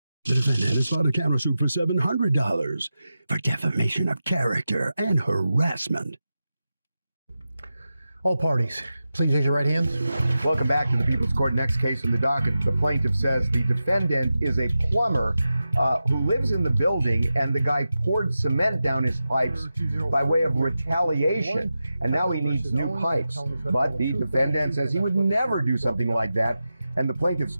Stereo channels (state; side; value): inverted; both; correlation -0.92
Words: The defendant has filed a countersuit for $700 for defamation of character and harassment. All parties, please raise your right hands. Welcome back to the People's Court. Next case from the docket. The plaintiff says the defendant is a plumber who lives in the building, and the guy poured cement down his pipes by way of retaliation, and now he needs new pipes. But the defendant says he would never do something like that. And the plaintiff's